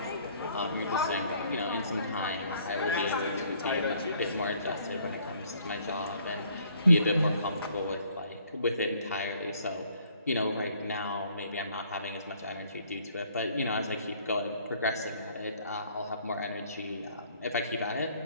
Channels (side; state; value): both; inverted; correlation -0.61